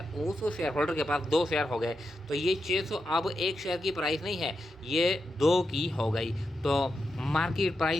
शेयर होल्डर के पास 2 शेयर हो गए। तो ये 600 अब एक शेयर की प्राइस नहीं है, ये 2 की हो गई। तो मार्केट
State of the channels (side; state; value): both; normal; correlation 0.87